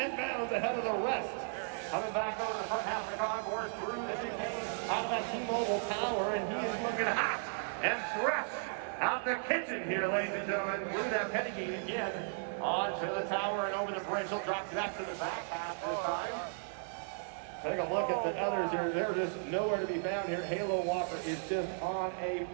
bounds ahead of the rest. Coming back over the front half of the concourse through the chicane out of that T-Mobile tower, and he is looking hot and fresh out the kitchen here, ladies and gentlemen. Through that penny gate again, onto the tower and over the bridge. He'll drop back to the back half this time. Take a look at the others here. They're just nowhere to be found here. Halo Walker is just on a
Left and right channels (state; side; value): silent; left; digital silence